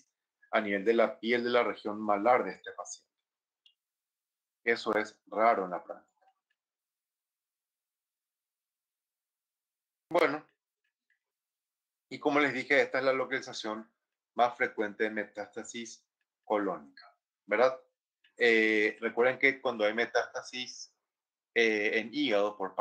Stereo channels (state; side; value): identical; both; correlation 1.00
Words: a nivel de la piel de la región malar de este paciente. Eso es raro en la práctica. Bueno, y como les dije, esta es la localización más frecuente de metástasis colónica, ¿verdad? Recuerden que cuando hay metástasis en hígado por